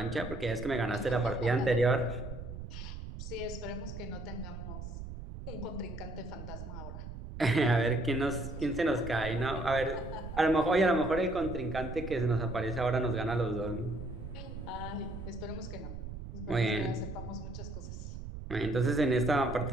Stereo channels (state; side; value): noise; right; rumble, 9 dB below the sound